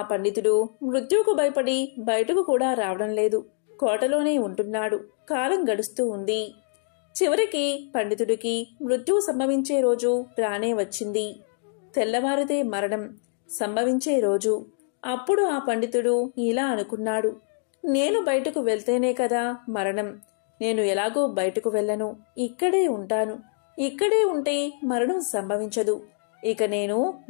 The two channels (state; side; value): silent; right; 62 dB below the other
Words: పండితుడు మృత్యువుకు భయపడి బయటకు కూడా రావడం లేదు. కోటలోనే ఉంటున్నాడు. కాలం గడుస్తూ ఉంది. చివరికి పండితుడికి మృత్యువు సంభవించే రోజు రానే వచ్చింది. తెల్లవారితే మరణం సంభవించే రోజు. అప్పుడు ఆ పండితుడు ఇలా అనుకున్నాడు, నేను బయటకు వెళ్తేనే కదా మరణం. నేను ఎలాగో బయటకు వెళ్ళను. ఇక్కడే ఉంటాను. ఇక్కడే ఉంటే మరణం సంభవించదు. ఇక నేను